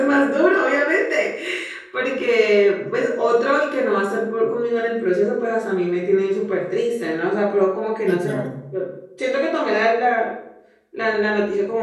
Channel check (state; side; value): identical; both; correlation 1.00